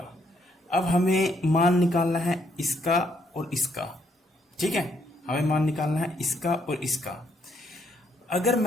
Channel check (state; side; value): normal; both; correlation 0.71